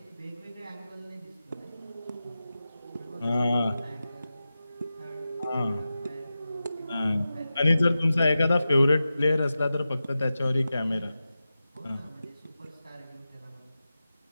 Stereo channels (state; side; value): inverted; both; correlation -0.93